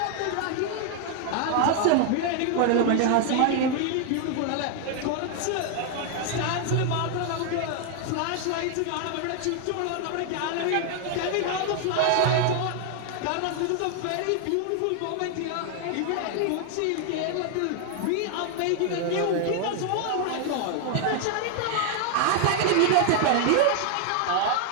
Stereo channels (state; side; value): different; both; correlation 0.00